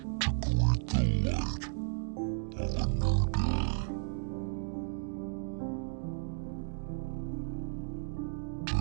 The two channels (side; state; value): left; silent; digital silence